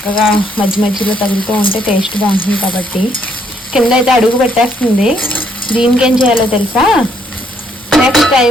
మధ్య మధ్యలో తగులుతూ ఉంటే టేస్ట్ బాగుంటుంది కాబట్టి. కింద అయితే అడుగు పెట్టేస్తుంది. దీనికి ఏం చేయాలో తెలుసా? నెక్స్ట్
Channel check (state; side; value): normal; both; correlation 0.70